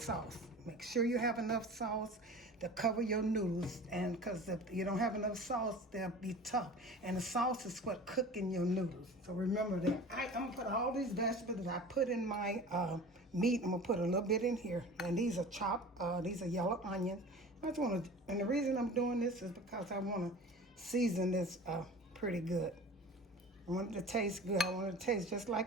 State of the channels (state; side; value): normal; both; correlation 0.39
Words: Make sure you have enough sauce to cover your noodles. And because if you don't have enough sauce, they'll be tough. And the sauce is what cooking your noodles. So remember that. I'm gonna put all these vegetables that I put in my meat. I'm gonna put a little bit in here. And these are chopped, these are yellow onions. And the reason I'm doing this is because I wanna season this pretty good. I want it to taste good. I want it to taste just